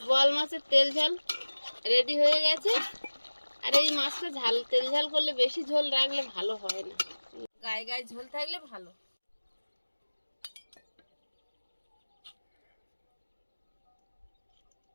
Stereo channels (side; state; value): both; inverted; correlation -1.00